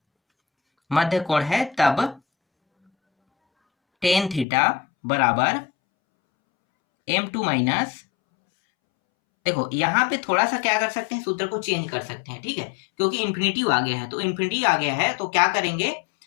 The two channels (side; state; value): right; drops out; at 4.5 s